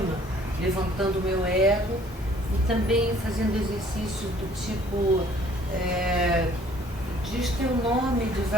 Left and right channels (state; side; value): normal; both; correlation 0.57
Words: levantando o meu ego e também fazendo exercícios do tipo diz teu nome de